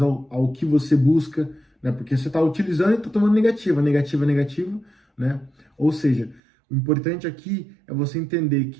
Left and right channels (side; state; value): left; drops out; at 6.4 s